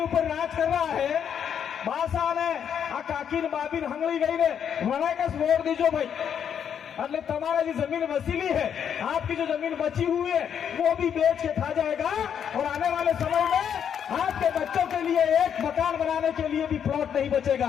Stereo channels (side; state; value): right; quieter; 8.3 dB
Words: राज कर रहा है, बासाने आ काकिन बाबिन हंगली गई ने मना का वोट दीजो भाई। એટલે તમારા जो जमीन वसीली है, आपकी जो जमीन बची हुई है, वो भी बेच के खा जाएगा और आने वाले समय में आपके बच्चों के लिए एक मकान बनाने के लिए भी प्लॉट नहीं